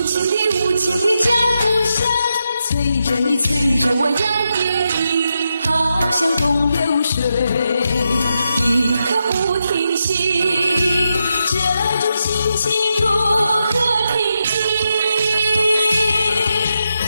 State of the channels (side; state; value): both; inverted; correlation -0.85